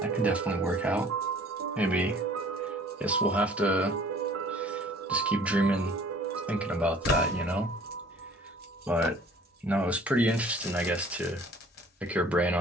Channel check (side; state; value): both; normal; correlation 0.52